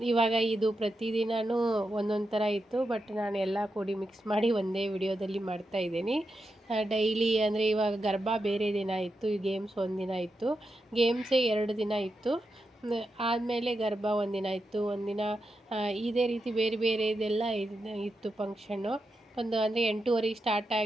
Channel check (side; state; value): both; normal; correlation 0.87